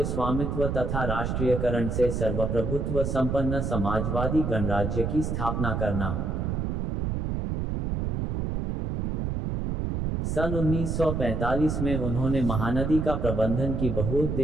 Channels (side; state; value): right; noise; rumble, 1 dB below the sound